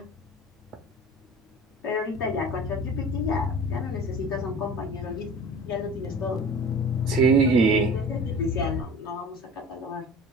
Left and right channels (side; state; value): both; normal; correlation 0.40